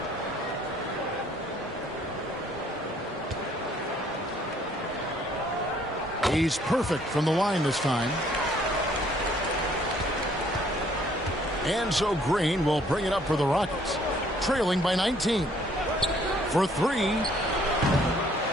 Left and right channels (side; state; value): both; normal; correlation 0.62